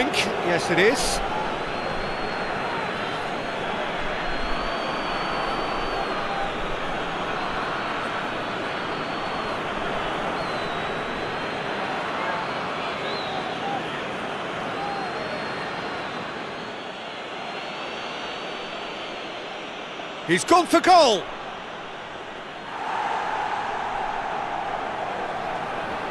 Yes, it is. He's gone for goal.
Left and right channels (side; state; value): both; identical; correlation 1.00